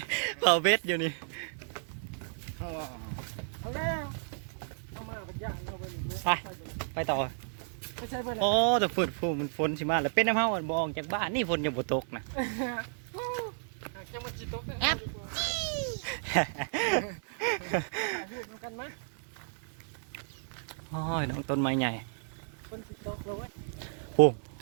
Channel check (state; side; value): silent; left; digital silence